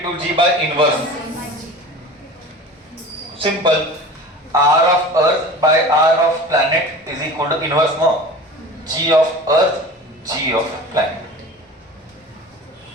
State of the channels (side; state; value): both; normal; correlation 0.37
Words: to G by inverse. Simple. R of earth by R of planet is equal to inverse, no? G of earth, G of planet.